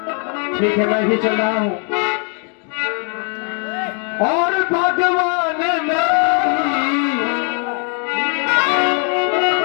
ठीक है, मैं भी चल रहा हूं। और भगवान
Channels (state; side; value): quieter; right; 39.3 dB